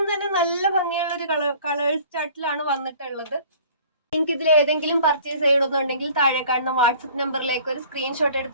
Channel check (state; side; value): inverted; both; correlation -0.50